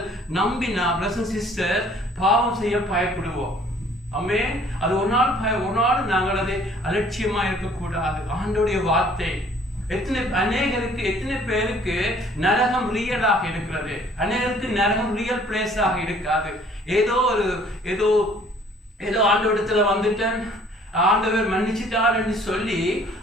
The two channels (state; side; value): normal; both; correlation 0.56